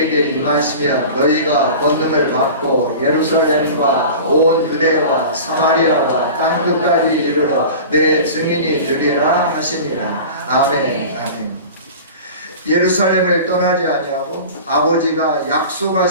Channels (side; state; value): both; inverted; correlation -0.36